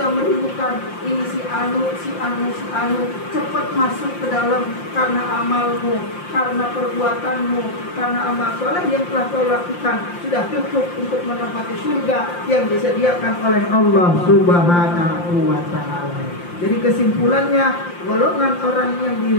merindukan ini si anu, cepat masuk ke dalam karena amalmu, karena perbuatanmu, karena amal soleh yang telah kau lakukan sudah cukup untuk menempati surga yang disediakan oleh Allah Subhanahu wa ta'ala. Jadi kesimpulannya, golongan orang yang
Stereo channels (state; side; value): late; right; 5.7 ms